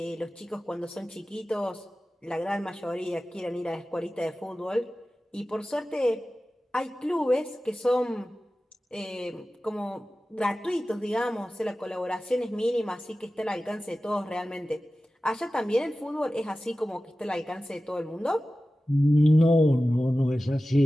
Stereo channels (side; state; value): both; normal; correlation 0.95